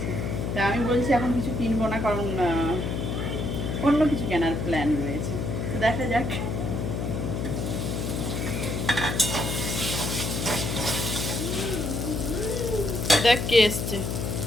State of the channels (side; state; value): left; noise; hum, 2 dB below the sound